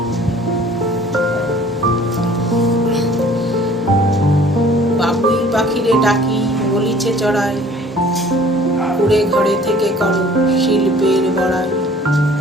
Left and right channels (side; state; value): both; normal; correlation 0.52